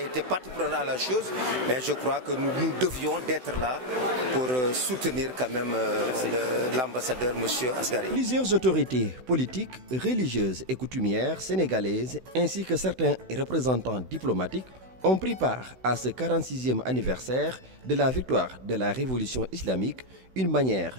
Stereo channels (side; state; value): left; late; 16 ms